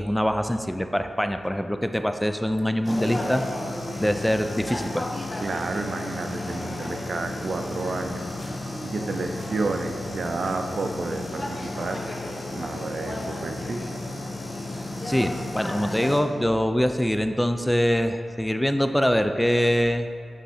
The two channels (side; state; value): both; normal; correlation 0.96